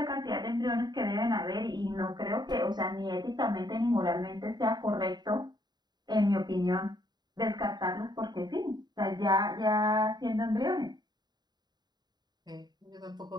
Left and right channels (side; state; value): left; late; 0.20 ms